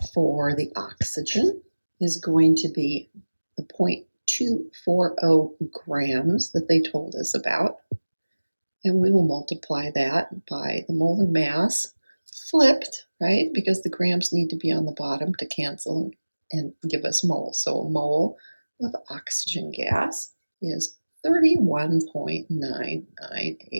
for the oxygen is going to be the 0.240 grams that they told us about. And we will multiply that by the molar mass flipped, right? Because the grams need to be on the bottom to cancel and give us moles. So a mole of oxygen gas is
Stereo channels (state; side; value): inverted; both; correlation -1.00